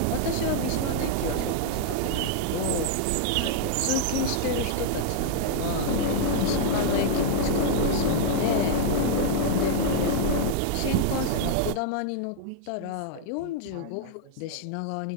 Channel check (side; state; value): both; different; correlation -0.01